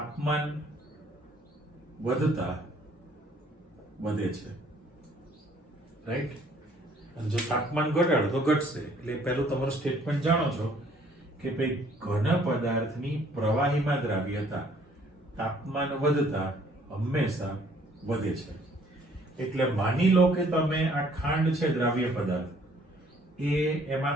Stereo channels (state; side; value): normal; both; correlation 0.60